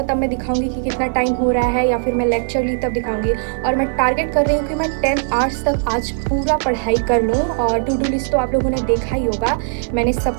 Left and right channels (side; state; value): left; silent; digital silence